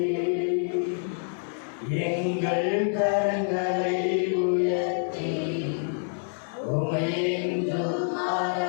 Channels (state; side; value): silent; right; digital silence